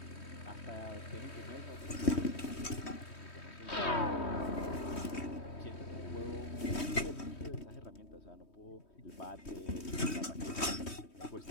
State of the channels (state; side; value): late; right; 3.2 ms